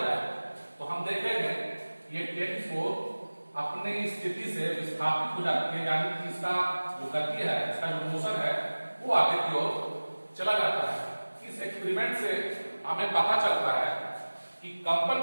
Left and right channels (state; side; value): inverted; both; correlation -1.00